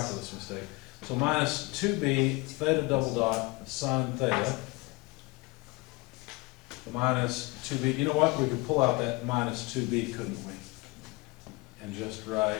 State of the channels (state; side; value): quieter; right; 24.9 dB